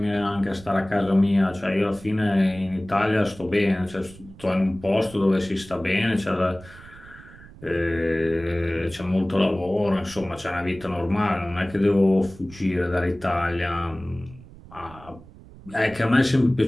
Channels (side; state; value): right; noise; rumble, 20 dB below the sound